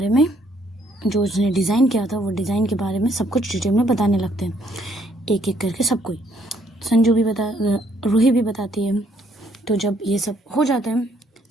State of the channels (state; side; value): normal; both; correlation 0.68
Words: में, जो उसने डिज़ाइन किया था, वो डिज़ाइन के बारे में सब कुछ डिटेल में बताने लगते हैं, एक एक करके सब कोई। रूही भी बताती है। तो जब ये सब हो जाता है,